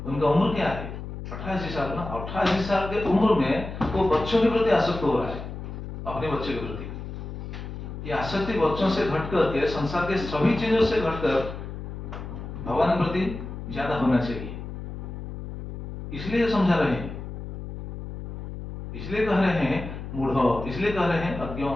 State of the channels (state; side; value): noise; left; hum, 8 dB below the sound